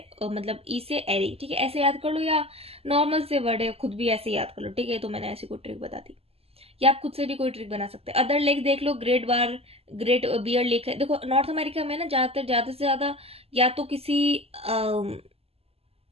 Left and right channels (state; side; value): late; left; 0.29 ms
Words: मतलब E से एरी, ठीक है। ऐसे याद कर लो, या नॉर्मल से वर्ड है, खुद भी ऐसे याद कर लो, ठीक है। तो मैंने ऐसी कोई ट्रिक बता दी, या आप खुद से भी कोई ट्रिक बना सकते हैं। अदर लेक देख लो, ग्रेट बियर लेक है। देखो नॉर्थ अमेरिका में ना ज्यादातर, ज्यादा से ज्यादा या तो किसी